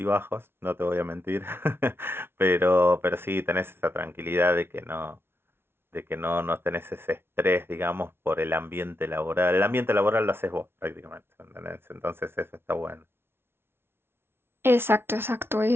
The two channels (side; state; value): left; late; 0.12 ms